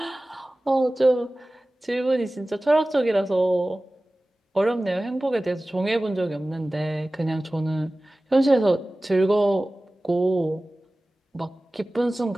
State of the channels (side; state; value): both; normal; correlation 0.97